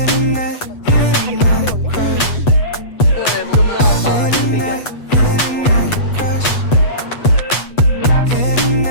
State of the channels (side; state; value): right; late; 8.1 ms